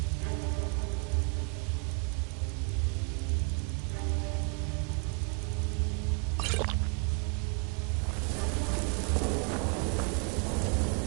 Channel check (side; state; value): left; quieter; 35.2 dB